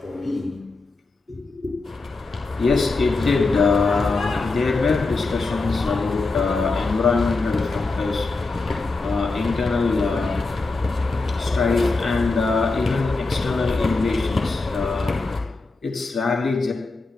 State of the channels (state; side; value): quieter; right; 3.6 dB